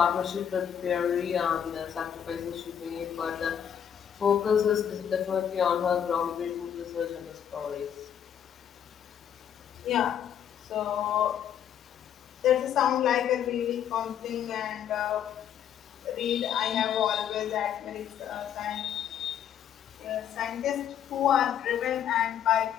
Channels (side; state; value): right; quieter; 9.2 dB